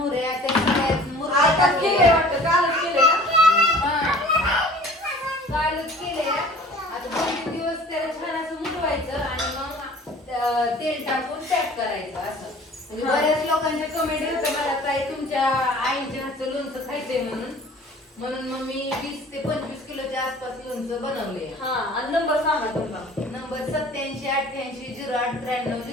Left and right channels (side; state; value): both; normal; correlation 0.47